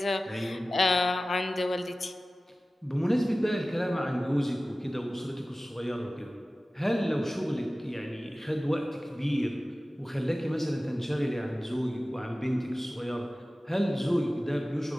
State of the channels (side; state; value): both; normal; correlation 0.96